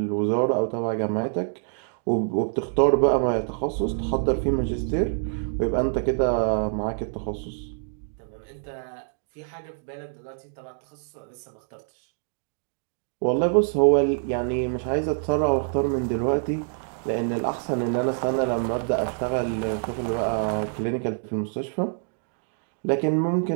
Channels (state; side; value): silent; left; digital silence